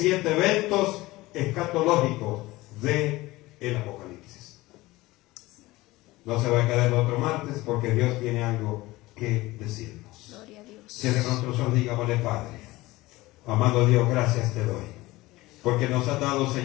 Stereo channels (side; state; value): right; quieter; 19.4 dB